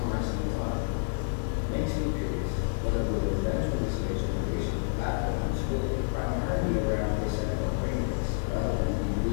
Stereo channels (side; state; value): right; silent; 59 dB below the other